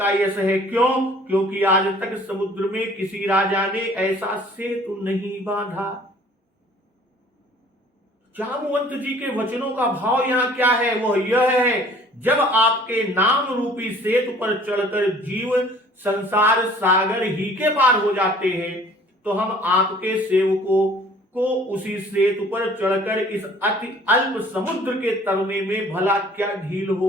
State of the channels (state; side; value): normal; both; correlation 0.53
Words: यश है। क्यों? क्योंकि आज तक समुद्र में किसी राजा ने ऐसा सेतु नहीं बांधा। जामवंत जी के वचनों का भाव यहां क्या है? वो यह है, जब आपके नाम रूपी सेतु पर चढ़कर जीव संसार सागर ही के पार हो जाते हैं, तो हम आपके सेवकों को उसी सेतु पर चढ़कर इस अति अल्प समुद्र के तरने में भला क्या ढील